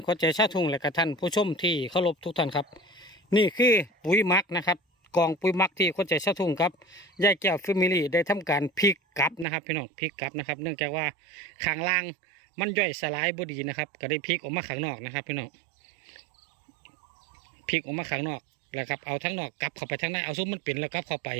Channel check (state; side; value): drops out; left; at 9.5 s